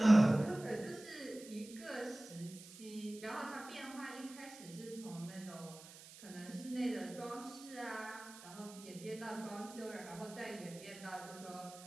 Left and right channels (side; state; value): right; noise; hiss, 17 dB below the sound